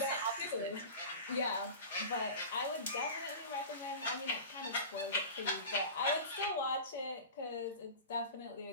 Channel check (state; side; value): inverted; both; correlation -0.34